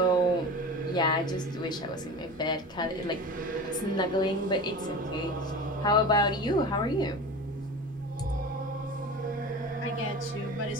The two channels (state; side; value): normal; both; correlation 0.33